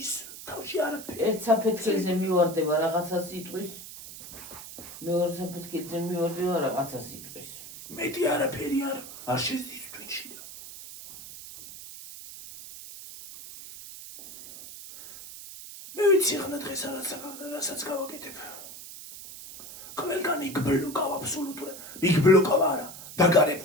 თავში არაფერი. ერთ საფეთქელზე მივარდება რაღაცა სიტყვის, მეორე საფეთქელზე მივარდება რაღაცა სიტყვის. მეტი არაფერი არ შედის ტვინში და მე ვიცი ხნა დღეს რასაც გავაკეთებ. ყველგან იგბლოკავ აბსოლუტურად. იგბლოკავ არა,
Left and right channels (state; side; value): noise; right; hiss, 13 dB below the sound